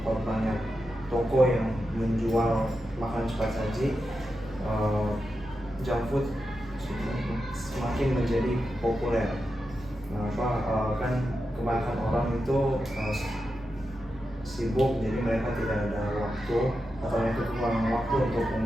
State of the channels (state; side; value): normal; both; correlation 0.89